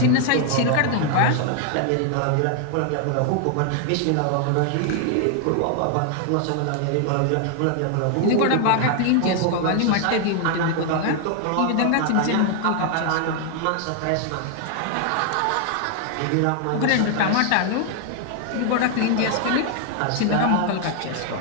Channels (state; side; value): different; both; correlation 0.00